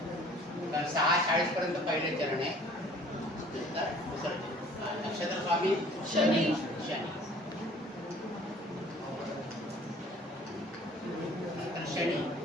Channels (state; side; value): normal; both; correlation 0.52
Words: तर 6:40 पर्यंत पहिले चरण आहे नंतर दुसरं चरण हा. नक्षत्र स्वामी शनी शनी नंतर शनी